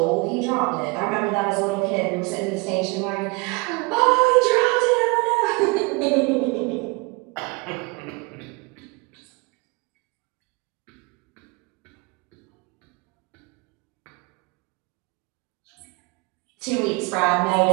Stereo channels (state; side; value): quieter; left; 27.6 dB